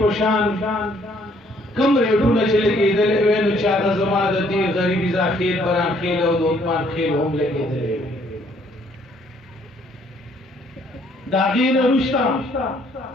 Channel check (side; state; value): both; normal; correlation 0.64